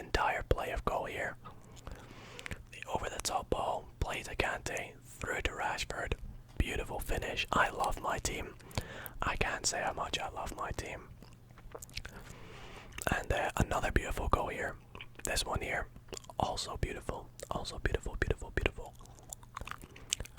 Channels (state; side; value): identical; both; correlation 1.00